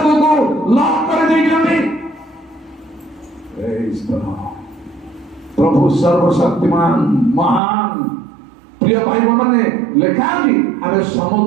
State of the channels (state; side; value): drops out; left; at 7.6 s